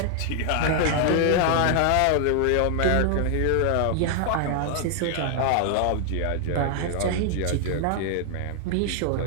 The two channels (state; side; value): different; both; correlation 0.00